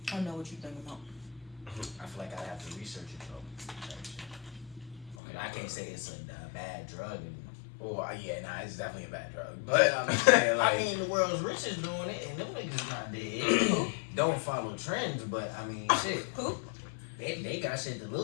I know what you're thinking about. I feel like I have to research it though. Okay, I can't say it's a bad drug. Well, yeah, nah, it's definitely a bad drug. But I'm saying, like, I mean, the world's richest doing it, and them niggas not dead. Don't follow trends, but I mean, shit. Who? They got shit to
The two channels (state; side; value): drops out; right; at 5.2 s